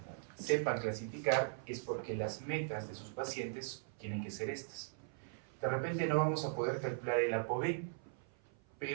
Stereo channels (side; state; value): left; silent; 51 dB below the other